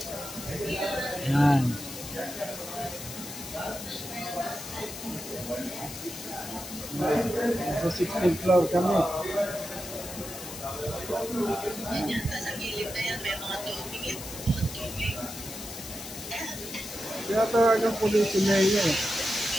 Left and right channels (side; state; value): left; noise; hiss, 10 dB below the sound